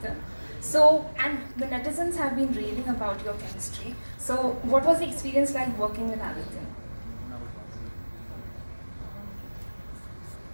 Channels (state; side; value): inverted; both; correlation -1.00